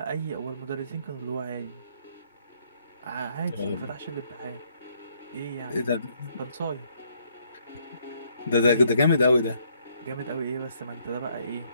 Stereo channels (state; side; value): inverted; both; correlation -0.69